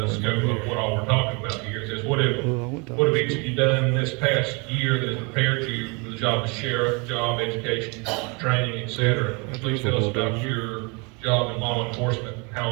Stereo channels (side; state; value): left; quieter; 30.9 dB